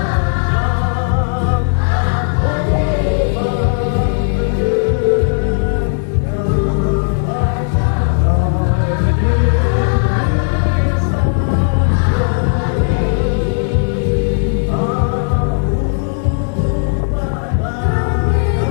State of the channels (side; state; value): right; silent; digital silence